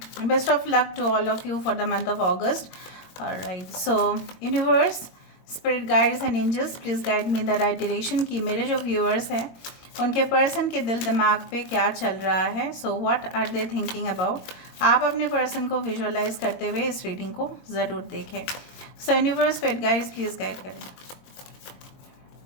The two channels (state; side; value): late; right; 22 ms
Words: best of luck to all of you for the month of August. Alright, so universe, spirit guides and angels please guide me the right direction कि मेरे जो व्यूअर्स हैं उनके पर्सन के दिल दिमाग पे क्या चल रहा है। So what are they thinking about. आप अपने पर्सन को विजुअलाइज करते हुए इस रीडिंग को ज़रूर देखें। सो universe, spirit guides please guide करें।